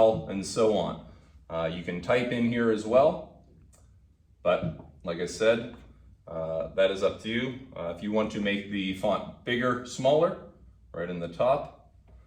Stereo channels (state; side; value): identical; both; correlation 1.00